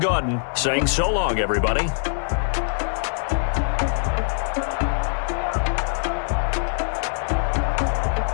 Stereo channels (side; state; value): right; silent; digital silence